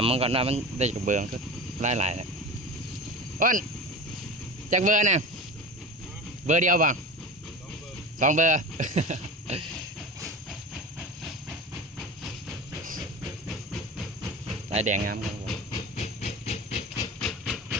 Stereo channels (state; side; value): normal; both; correlation 0.31